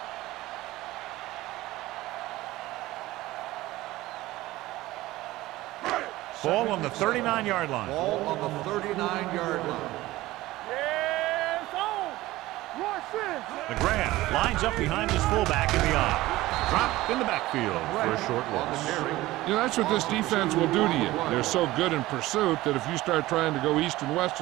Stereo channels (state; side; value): quieter; left; 17.6 dB